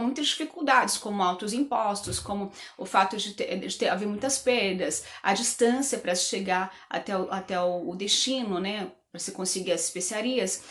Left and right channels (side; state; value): both; identical; correlation 1.00